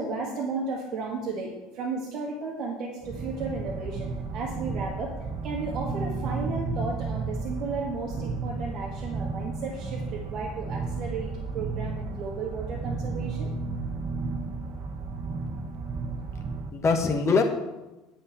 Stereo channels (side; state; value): both; normal; correlation 0.54